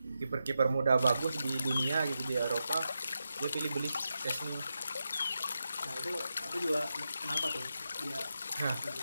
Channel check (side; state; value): both; inverted; correlation -0.88